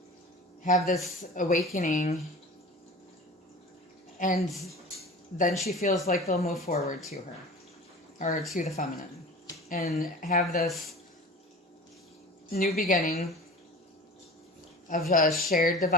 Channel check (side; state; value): both; normal; correlation 0.37